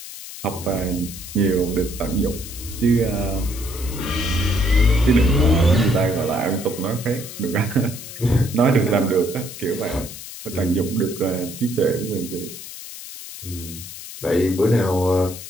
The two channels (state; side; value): noise; left; hiss, 12 dB below the sound